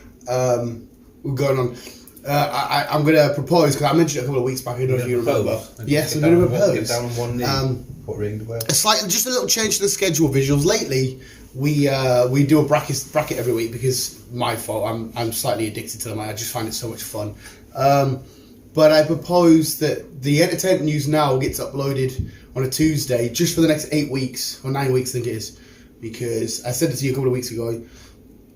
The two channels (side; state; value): both; identical; correlation 1.00